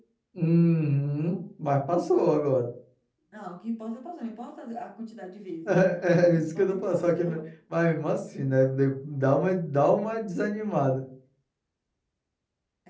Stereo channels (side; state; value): both; identical; correlation 1.00